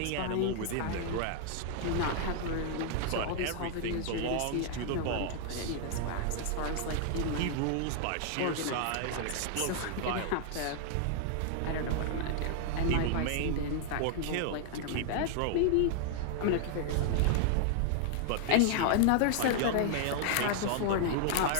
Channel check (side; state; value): both; different; correlation 0.00